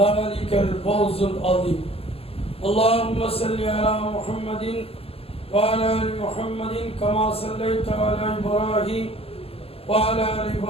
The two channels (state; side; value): late; right; 0.28 ms